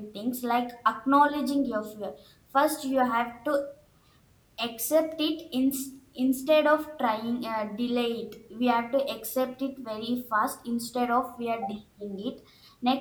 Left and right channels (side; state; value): both; identical; correlation 1.00